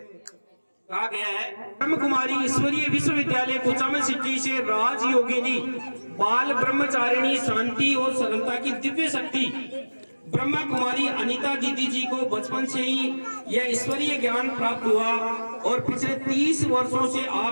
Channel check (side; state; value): both; inverted; correlation -1.00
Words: कहा गया है, ब्रह्म कुमारी ईश्वरीय विश्वविद्यालय कुचामन सिटी से राज योगिनी बाल ब्रह्मचारिणी शांति और सरलता की दिव्य शक्ति ब्रह्मा कुमारी अनीता दीदी जी को बचपन से ही यह ईश्वरीय ज्ञान प्राप्त हुआ और पिछले 30 वर्षों से